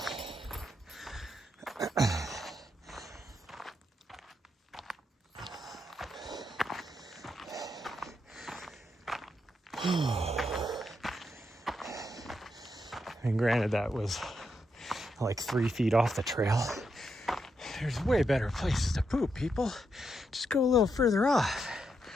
And granted, that was like 3 feet off the trail. There's way better places to poop, people. Just go a little further off.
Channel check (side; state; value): both; normal; correlation 0.82